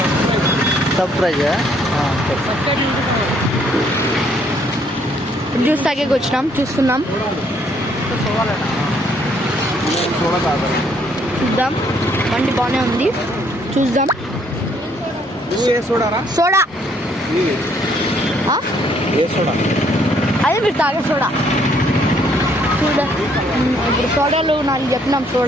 సబ్స్క్రైబ్ జ్యూస్ తాగేకి వచ్చినాం, చూస్తున్నాం. చూద్దాం, బండి బాగానే ఉంది, చూద్దాం. సోడా అదే మీరు తాగే సోడా ఇప్పుడు సోడాలు 4 చెప్పినాం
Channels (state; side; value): normal; both; correlation 0.67